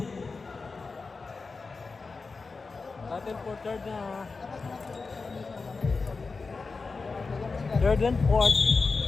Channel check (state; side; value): quieter; right; 4.3 dB